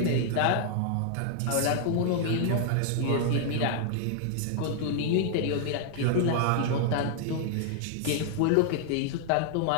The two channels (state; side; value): different; both; correlation 0.00